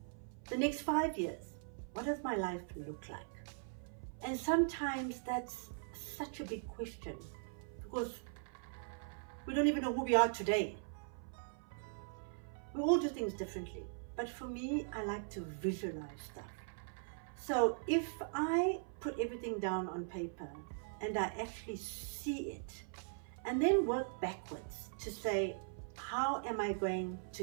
the next 5 years, what does my life look like? And sometimes that's such a big question because we don't even know who we are today. We all do things differently, but for me, I like to visualize stuff. So if I put everything down on paper and I actually see it and then work backwards to say, how am I going to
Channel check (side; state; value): left; silent; 51 dB below the other